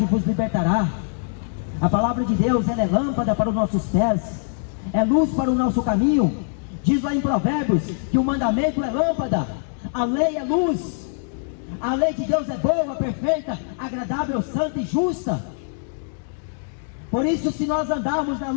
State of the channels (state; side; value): silent; right; digital silence